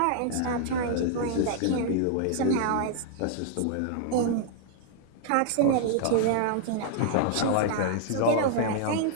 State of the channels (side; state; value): both; different; correlation 0.00